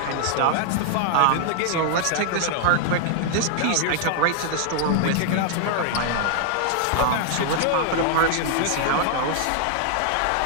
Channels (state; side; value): different; both; correlation 0.00